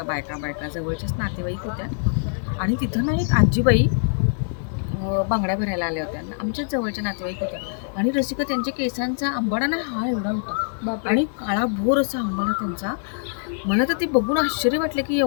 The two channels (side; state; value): right; silent; digital silence